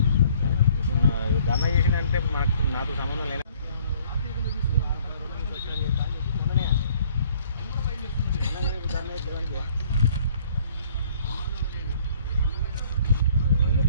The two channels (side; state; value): both; inverted; correlation -0.58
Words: ధర్నా చేసిందంటే నాకు సంబంధం లేదు.